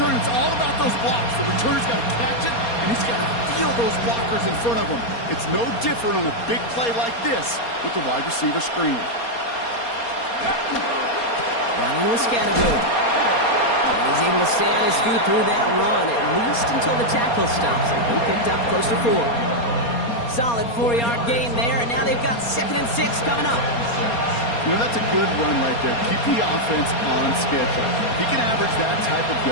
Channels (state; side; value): late; right; 4.3 ms